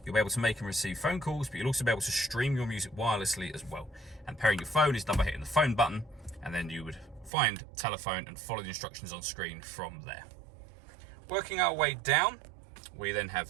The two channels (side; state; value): left; drops out; at 7.3 s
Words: you'll be able to make and receive phone calls, but you'll also be able to stream your music wirelessly as well. And pairing your phone is done by hitting the phone button, and then you would find telephone and follow the instructions on screen from there. Working our way down, we then have